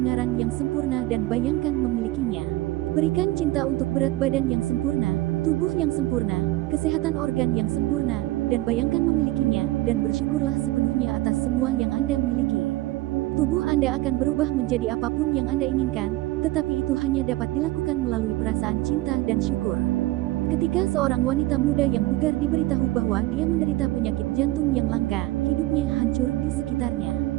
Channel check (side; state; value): left; quieter; 17.7 dB